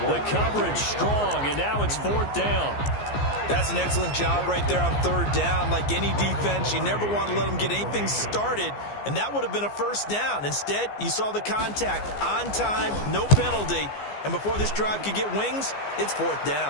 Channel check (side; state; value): right; late; 15 ms